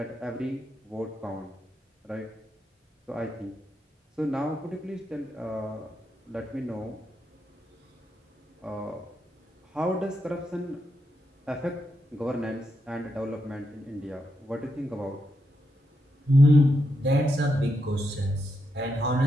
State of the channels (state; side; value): normal; both; correlation 0.83